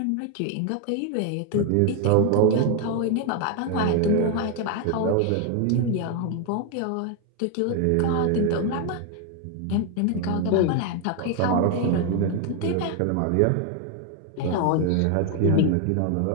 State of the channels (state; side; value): different; both; correlation 0.01